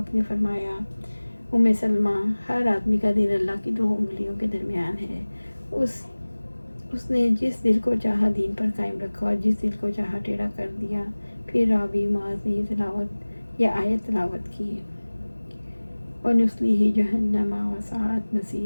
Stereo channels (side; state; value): both; inverted; correlation -1.00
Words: نے فرمایا سلمہ، ہر آدمی کا دل اللہ کی 2 انگلیوں کے درمیان ہے۔ اس نے جس دل کو چاہا دین پر قائم رکھا اور جس دل کو چاہا ٹیڑھا کر دیا۔ پھر راوی معاذ نے یہ آیت تلاوت کی، وَنُصْلِهِ جَهَنَّمَ وَسَاءَتْ